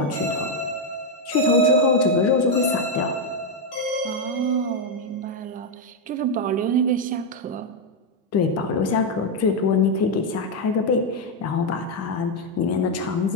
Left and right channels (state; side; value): normal; both; correlation 0.03